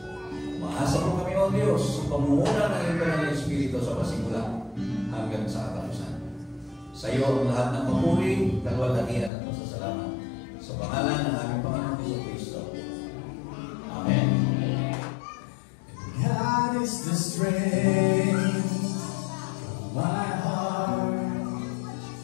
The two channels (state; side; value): drops out; right; at 9.3 s